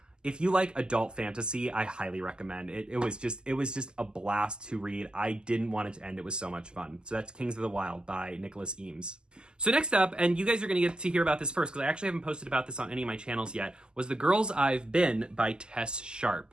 If you like adult fantasy, I highly recommend it. It was just a blast to read. I didn't want it to end. It was so much fun. So that's Kings of the Wyld by Nicholas Eames. So next up, and you guys are going to get to hear about this first because I actually haven't posted about this on any of my channels yet, was The Girls Ive Been by Tess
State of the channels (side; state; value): left; late; 0.047 ms